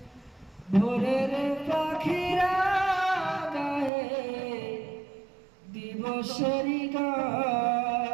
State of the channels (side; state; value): left; drops out; at 3.9 s